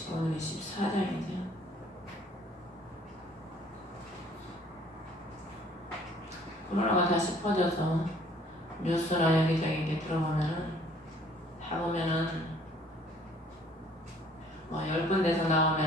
오늘이 14장이죠. 코로나가 다시 퍼져서 뉴스나 여기저기 이렇게 들어보면은 다 보면은 뭐 10군데서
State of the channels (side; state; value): both; normal; correlation 0.58